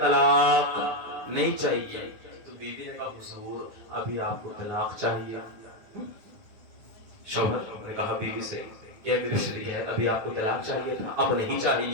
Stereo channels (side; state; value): left; late; 9.7 ms